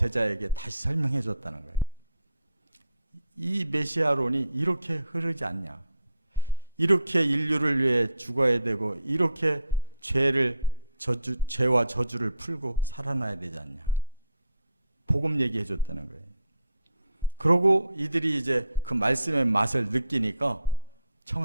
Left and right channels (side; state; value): both; inverted; correlation -0.71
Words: 다시 설명해 줬다는 거예요. 이 메시아론이 이렇게 흐르지 않냐? 이렇게 인류를 위해 죽어야 되고 이렇게 죄와 저주를 풀고 살아나야 되지 않냐? 복음 얘기해 줬다는 거예요. 그러고 이들이 이제 그 말씀의 맛을 느끼니까